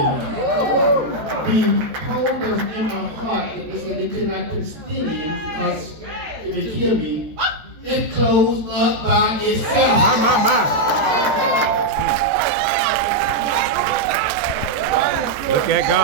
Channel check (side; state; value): left; late; 14 ms